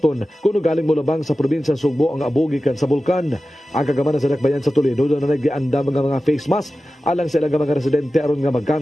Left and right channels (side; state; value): both; normal; correlation 0.94